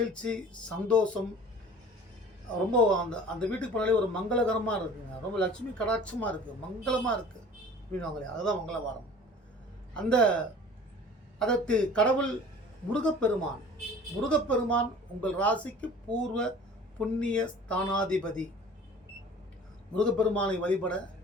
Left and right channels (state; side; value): normal; both; correlation 0.45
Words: சந்தோஷம், ரொம்ப அந்த வீட்டுக்கு போனாலே ஒரு மங்களகரமாக இருக்குங்க, ரொம்ப லட்சுமி கடாட்சமாக இருக்குது, மங்களமாக இருக்குது அப்படின்வாங்களே, அதுதான் மங்களவாரம். அதற்கு கடவுள் முருகப்பெருமான் உங்கள் ராசிக்கு பூர்வ புண்ணிய ஸ்தானாதிபதி. முருகப்பெருமானை வழிபட